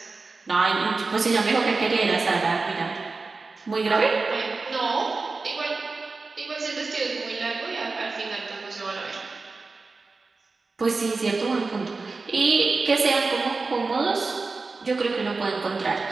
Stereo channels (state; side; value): quieter; left; 4.0 dB